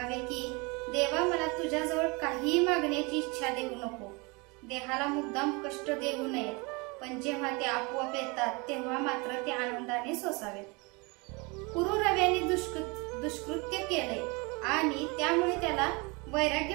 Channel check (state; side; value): quieter; left; 28.1 dB